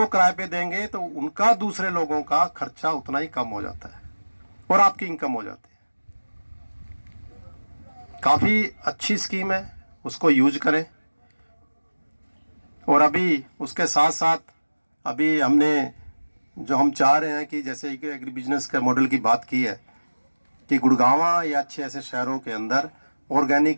किराए पे देंगे तो उनका दूसरे लोगों का खर्चा उतना ही कम हो जाता है और आपकी इनकम हो जाती है। काफी अच्छी स्कीम है, उसको यूज करें। और अभी उसके साथ साथ अभी हमने जो हम चाह रहे हैं कि जैसे एग्री बिजनेस के मॉडल की बात की है कि गुड़गांव या अच्छे ऐसे शहरों के अंदर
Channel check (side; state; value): both; inverted; correlation -1.00